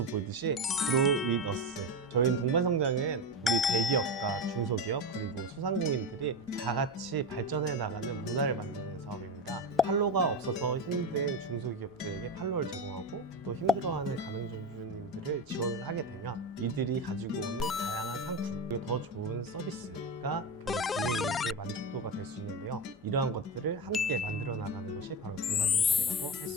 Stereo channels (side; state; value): both; normal; correlation 0.18